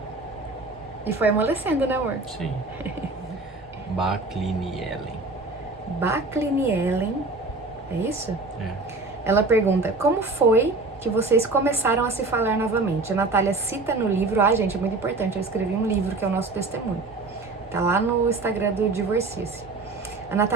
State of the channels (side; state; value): left; quieter; 3.4 dB